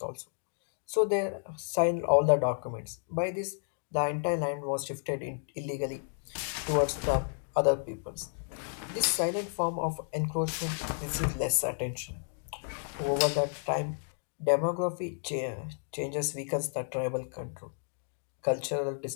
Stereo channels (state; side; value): silent; right; digital silence